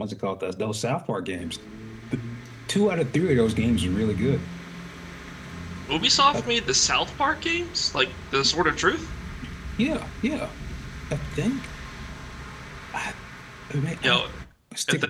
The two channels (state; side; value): identical; both; correlation 1.00